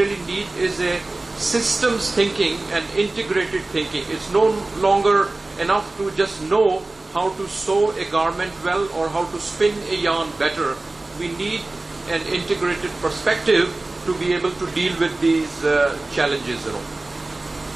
need is a systems thinking and integrated thinking. It's no longer enough to just know how to sew a garment well or how to spin a yarn better. We need an integrated perspective to be able to deal with these challenges.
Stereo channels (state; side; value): quieter; left; 3.0 dB